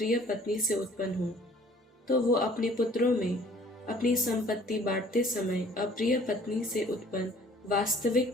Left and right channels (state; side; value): normal; both; correlation 0.54